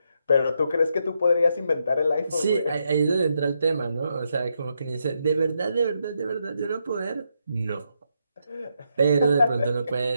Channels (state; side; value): inverted; both; correlation -0.80